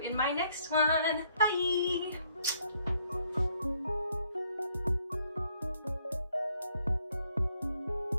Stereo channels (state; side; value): inverted; both; correlation -0.69